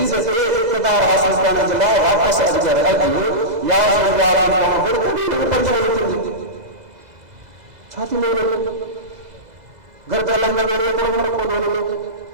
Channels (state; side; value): late; left; 2.0 ms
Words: کے اقتدار حاصل کرنے جلا واپس اگر اگل یا صلی اللہ علیہ وسلم پریشانی تھی چھاتی میں لوگ گھر کا لنگا میرے کو مرکو دونوں لوگ